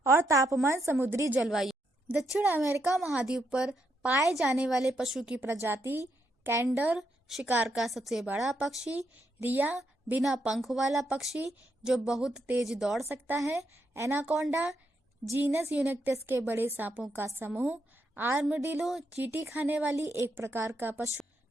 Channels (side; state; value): both; normal; correlation 0.79